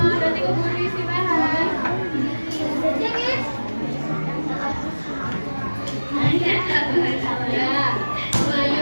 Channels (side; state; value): both; inverted; correlation -1.00